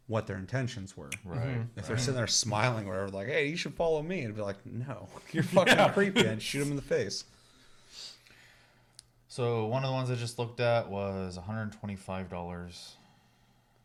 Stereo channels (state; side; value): identical; both; correlation 1.00